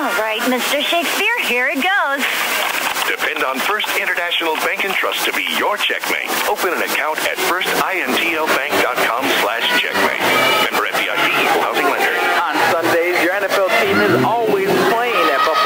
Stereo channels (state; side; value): identical; both; correlation 1.00